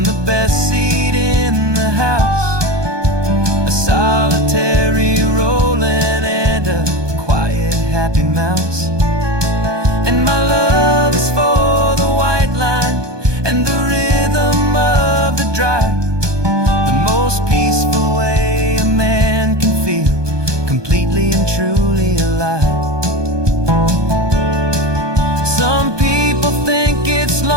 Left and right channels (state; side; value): late; left; 1.2 ms